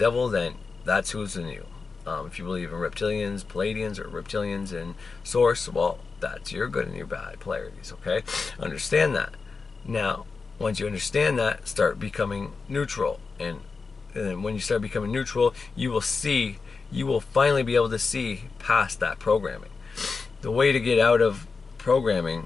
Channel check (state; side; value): quieter; right; 4.6 dB